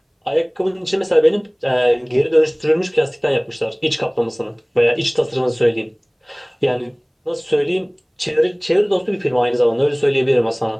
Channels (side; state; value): both; identical; correlation 1.00